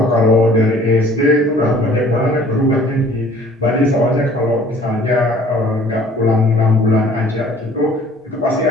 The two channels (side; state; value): both; normal; correlation 0.53